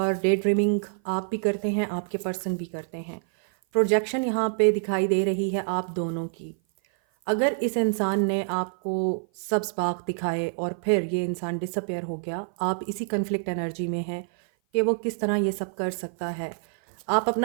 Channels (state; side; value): silent; left; 56 dB below the other